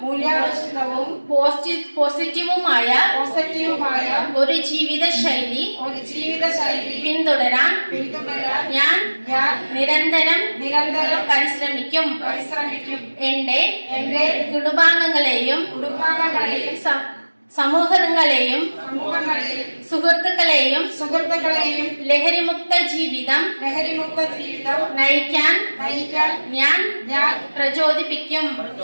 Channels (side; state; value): both; inverted; correlation -1.00